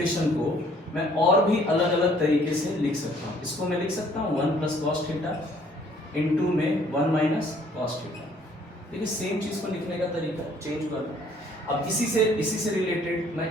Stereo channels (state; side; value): normal; both; correlation 0.60